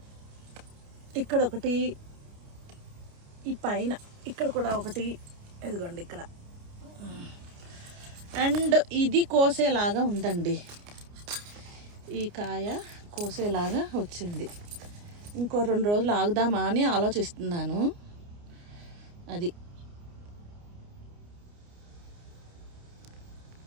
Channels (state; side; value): late; left; 29 ms